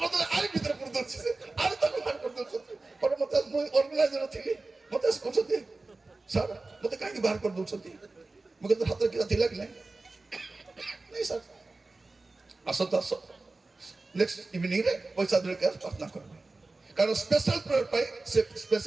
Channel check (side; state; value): left; quieter; 3.4 dB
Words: ଆରି ଭିତରେ ପୁଣି ଦଉଛି, ଆରି ତାକୁ ବାହାର କରିଦଉଛନ୍ତି। ପରେ ମତେ, ମୁଁ ଅର୍ଗାନାଇଜର ଥିଲି, ମତେ ଆସି କହୁଛନ୍ତି, ସାର୍ ମତେ କାହିଁକି ବାହାର କରିଦଉଛନ୍ତି? ମୁଁ କିନ୍ତୁ ହାତରେ କିଛିଟା ଥିଲା କି ନାହିଁ? ନାଇଁ ସାର୍, ଆସନ୍ତୁ ଆସ, ନେକ୍ସଟ ଇଭିନିଂରେ ପଇସା ଧରିକି ପ୍ରାର୍ଥନା କରିବେ। କାରଣ ସ୍ପେଶାଲ ପ୍ରେୟର ପାଇଁ ସେ